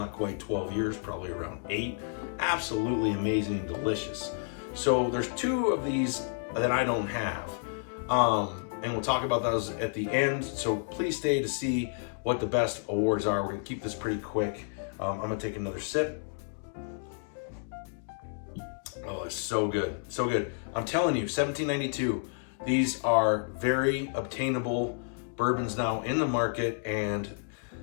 quite 12 years, probably around 8. Absolutely amazing and delicious. So there's 2 of these that I don't have, and we'll talk about those at the end. So please stay to see what the best awards are. We're gonna keep this pretty quick. I'm gonna take another sip. Oh, it's so good, so good. I'm telling you, 1792, these are very obtainable bourbons now in the market, and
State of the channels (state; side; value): silent; right; digital silence